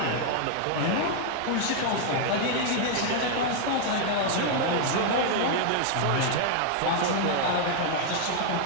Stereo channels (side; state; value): both; different; correlation 0.00